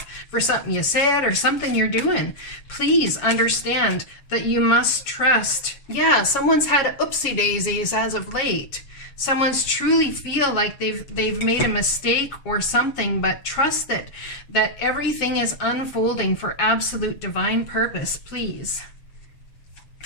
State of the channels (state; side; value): late; right; 7.2 ms